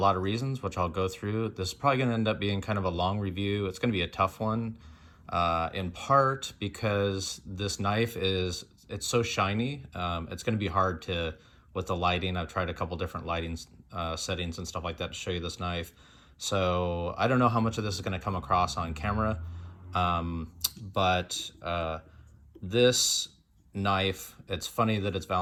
of reasons, which I'll go through. This is probably going to end up being kind of a long review. It's going to be a tough one, in part because this knife it's so shiny. It's going to be hard with the lighting. I've tried a couple different lighting settings and stuff like that to show you this knife. So I don't know how much of this is going to come across on camera, but this knife, it's funny that it's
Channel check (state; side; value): identical; both; correlation 1.00